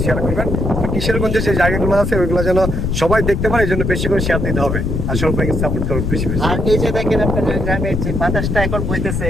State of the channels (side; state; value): left; noise; rumble, 1 dB below the sound